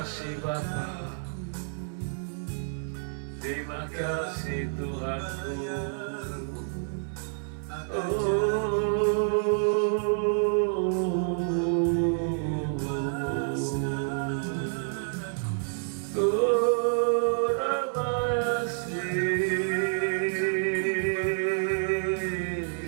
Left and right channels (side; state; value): left; silent; digital silence